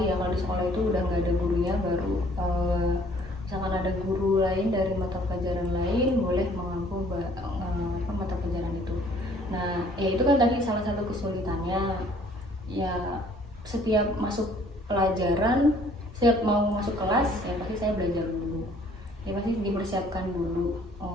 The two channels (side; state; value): both; normal; correlation 0.58